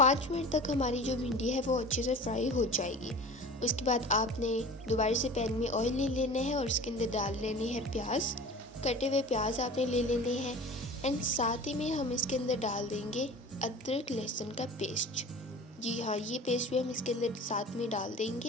मिनट तक हमारी जो भिंडी है वो अच्छे से फ्राई हो जाएगी। उसके बाद आपने दोबारा से पैन में ऑयल ले लेना है और उसके अंदर डाल लेनी है प्याज। कटे हुए प्याज आपने ले लेने हैं एंड साथ ही में हम इसके अंदर डाल देंगे अदरक लहसुन का पेस्ट। जी हाँ, ये पेस्ट भी हम इसके अंदर साथ में डाल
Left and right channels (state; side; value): normal; both; correlation 0.38